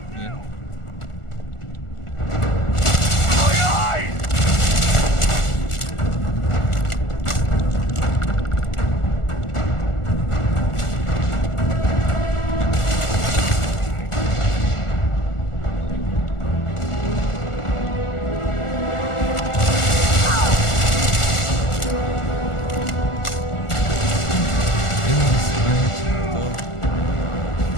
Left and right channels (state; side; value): late; right; 1.4 ms